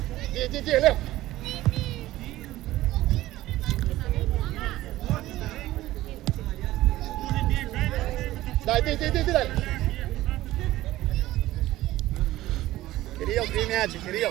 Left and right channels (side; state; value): left; quieter; 16.0 dB